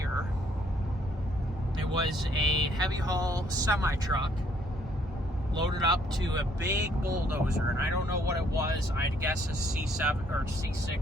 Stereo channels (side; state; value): both; normal; correlation 0.66